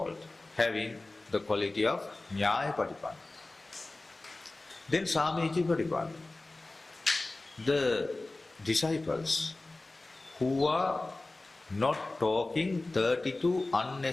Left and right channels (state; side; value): quieter; right; 3.0 dB